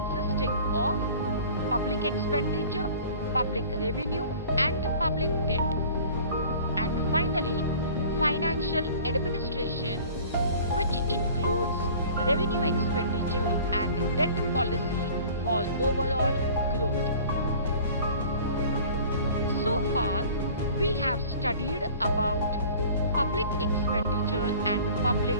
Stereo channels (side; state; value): both; inverted; correlation -0.46